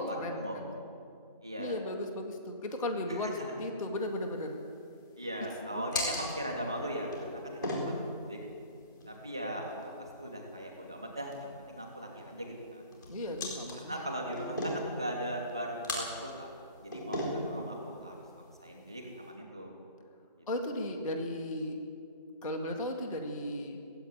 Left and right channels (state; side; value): inverted; both; correlation -0.41